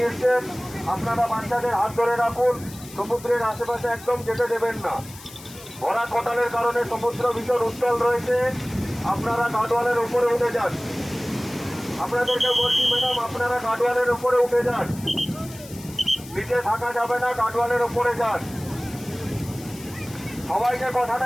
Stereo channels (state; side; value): noise; left; hiss, 17 dB below the sound